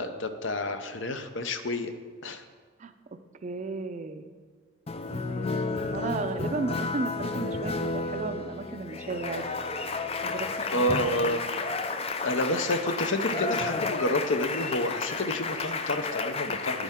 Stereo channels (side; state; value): both; normal; correlation 0.01